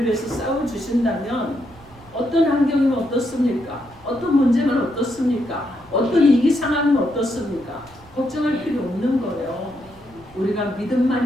위해서 싸워주신다면 어떤 환경이면 어떻습니까? 어떤 문제면 어떻습니까? 어떤 위기 상황이면 어떻습니까? 걱정할 필요 없는 거예요. 우리가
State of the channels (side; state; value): right; noise; rumble, 24 dB below the sound